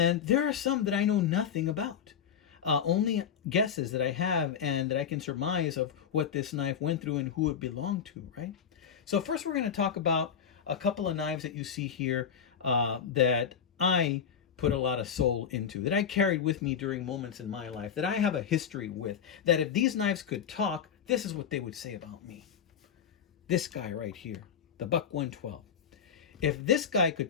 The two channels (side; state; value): right; quieter; 7.6 dB